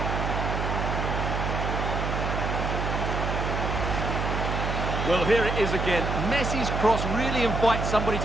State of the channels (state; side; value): noise; right; hum, 1 dB below the sound